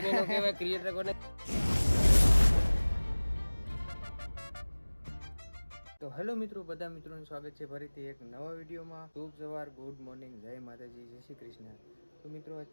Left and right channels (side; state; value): both; inverted; correlation -1.00